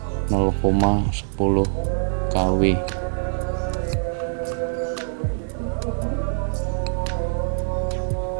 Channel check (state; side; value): silent; left; digital silence